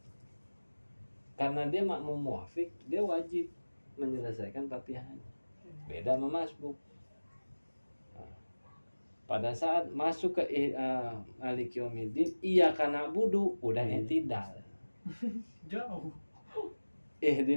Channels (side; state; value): both; inverted; correlation -1.00